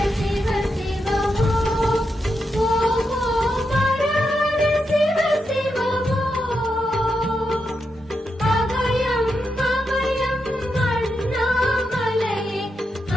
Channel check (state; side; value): normal; both; correlation 0.85